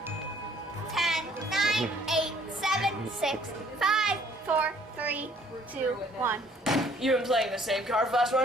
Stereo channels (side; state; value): both; normal; correlation 0.59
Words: 10, 9, 8, 7, 6, 5, 4, 3, 2, 1. You've been playing the same card for the last